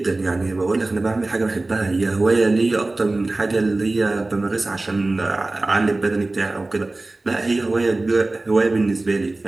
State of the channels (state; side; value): quieter; left; 3.0 dB